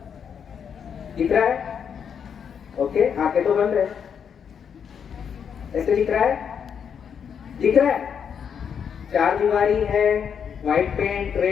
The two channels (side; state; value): right; quieter; 7.4 dB